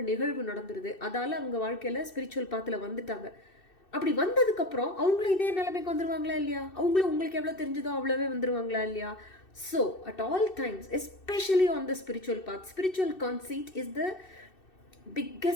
நிகழ்வு நடந்துருது, அதால் அவங்க வாழ்க்கையில் ஸ்பிரிச்சுவல் பாத்தில் வந்துட்டாங்க. அப்படி வந்ததுக்கப்புறம் அவங்களும் இதே நிலைமைக்கு வந்துடுவாங்களா இல்லையா? அவங்களும் உங்களுக்கு எவ்வளோ தெரிஞ்சதோ அவ்வளோவே வந்துடுவாங்களா இல்லையா? So at all times, especially on the spiritual path, spiritual conceit is the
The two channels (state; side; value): late; right; 2.6 ms